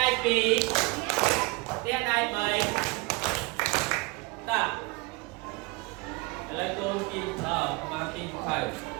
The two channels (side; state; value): left; quieter; 25.5 dB